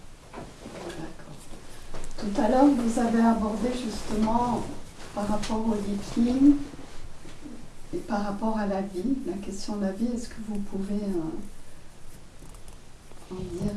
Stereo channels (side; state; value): both; identical; correlation 1.00